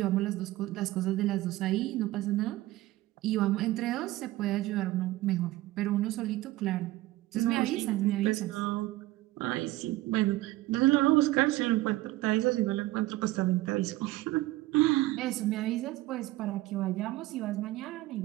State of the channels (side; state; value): left; quieter; 17.4 dB